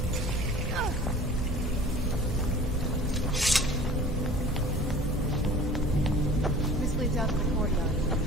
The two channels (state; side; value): normal; both; correlation 0.45